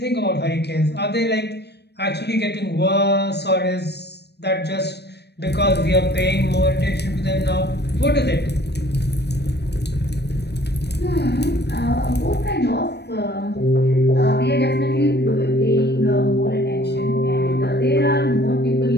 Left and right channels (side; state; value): right; late; 0.49 ms